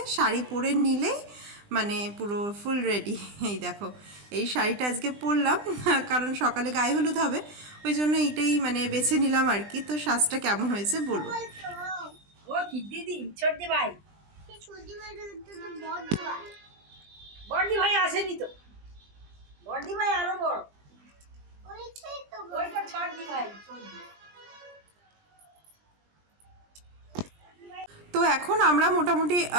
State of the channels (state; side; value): late; left; 20 ms